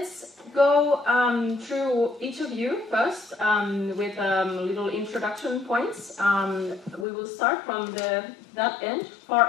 go through each of you first with little introduction points. We will start from far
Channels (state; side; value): drops out; right; at 7.1 s